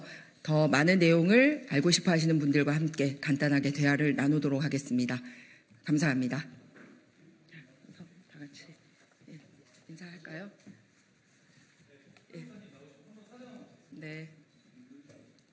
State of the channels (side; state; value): both; identical; correlation 1.00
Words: 더 많은 내용을 알고 싶어 하시는 분들과 함께 간단하게 대화를 나누도록 하겠습니다. 감사합니다. 다 같이 인사할까요? 네.